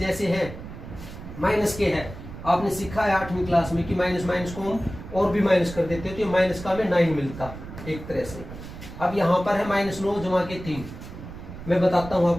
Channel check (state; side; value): noise; right; rumble, 12 dB below the sound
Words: हैं, माइनस के है। आपने सीखा है 8वीं क्लास में कि माइनस माइनस को हम और भी माइनस कर देते हो तो ये माइनस का हमें 9 मिलता एक तरह से। अब यहाँ पर है -9 जमा के 3। मैं बताता हूँ